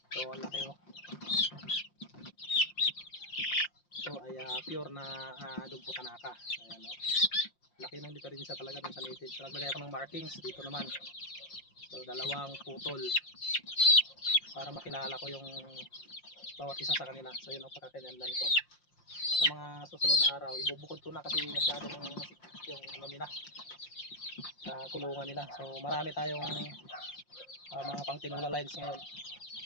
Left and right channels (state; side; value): late; right; 5.7 ms